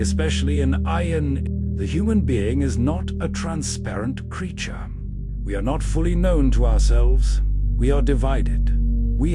in Aion, the human being is not a transparent creature. We are not fully known to ourselves. We are divided. We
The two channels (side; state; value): both; identical; correlation 1.00